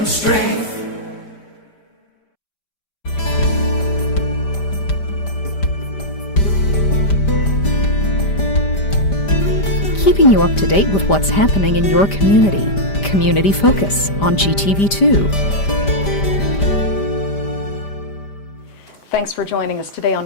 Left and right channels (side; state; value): right; late; 5.0 ms